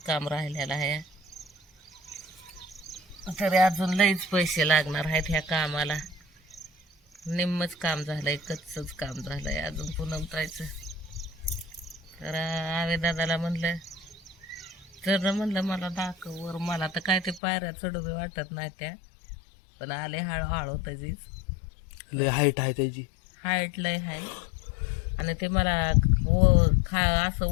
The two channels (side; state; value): right; drops out; at 17.4 s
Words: काम राहिलेलं आहे, तरी अजून लईच पैसे लागणार आहेत ह्या कामाला. निम्मच काम झालंय, कच्चच काम झालंय अजून पूनम ताईचं. तर आवे दादाला म्हणलं, तर म्हणलं मला दाखव वर. मला तर काय ते पायऱ्या चढू बी वाटत नाही त्या, पण आले हळूहळू त्याचीच. लय हाईट आहे त्याची, हाईट लय हाय. आणि ते मला असं